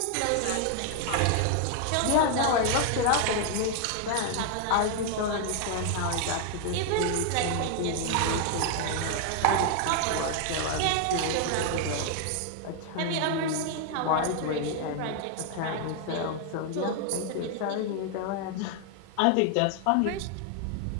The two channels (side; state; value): both; different; correlation 0.00